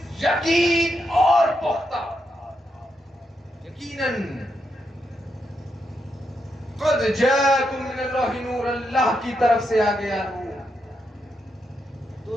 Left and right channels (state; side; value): normal; both; correlation 0.82